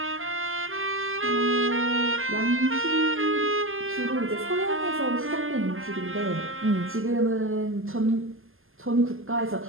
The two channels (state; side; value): late; left; 0.60 ms